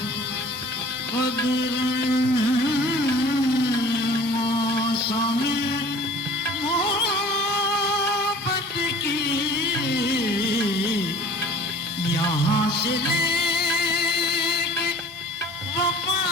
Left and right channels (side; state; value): both; normal; correlation 0.47